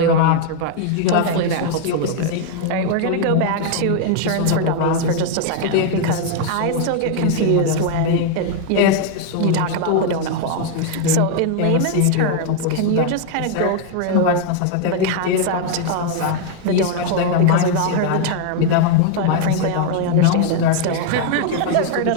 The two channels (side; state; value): both; different; correlation 0.00